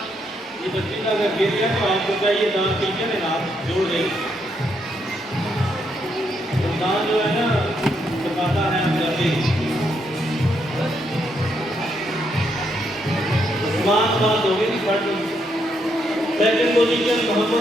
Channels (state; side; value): normal; both; correlation 0.77